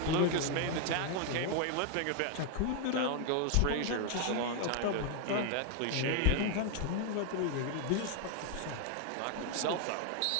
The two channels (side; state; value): both; different; correlation 0.00